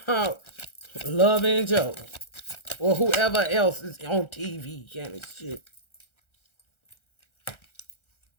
about? Love and Joe, or whoever else is on TV kind of shit.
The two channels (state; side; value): late; right; 1.4 ms